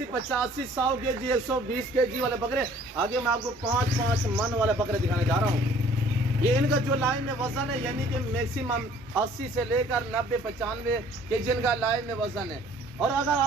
85, 100 केजी, 120 केजी वाले बकरे, आगे मैं आपको 5-5 मन वाले बकरे दिखाने जा रहा हूँ। ये इनका जो लाइन में वजन है, यानी कि मैक्सिमम 80 से लेकर 90, 95 केजी इनका लाइन में वजन है। और अगर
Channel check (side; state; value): both; normal; correlation 0.55